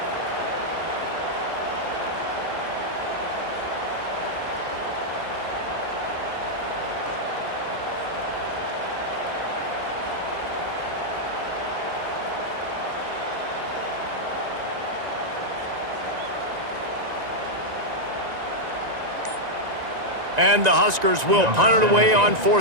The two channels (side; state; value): left; late; 1.9 ms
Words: And the Huskers will punt it away on